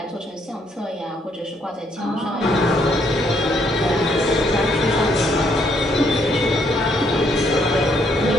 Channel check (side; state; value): both; normal; correlation 0.71